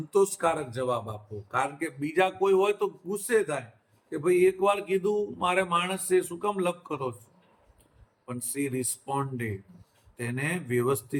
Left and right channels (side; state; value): both; identical; correlation 1.00